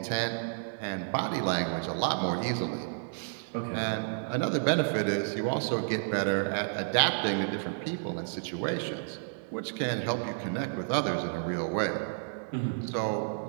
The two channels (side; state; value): left; silent; digital silence